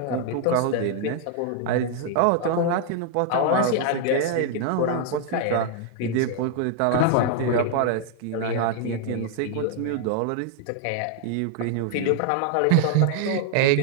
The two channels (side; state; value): both; different; correlation 0.00